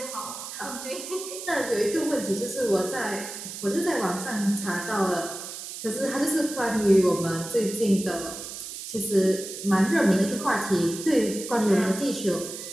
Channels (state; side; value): noise; right; hiss, 9 dB below the sound